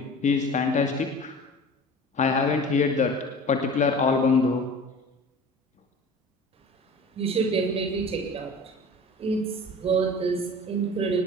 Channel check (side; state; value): both; normal; correlation 0.40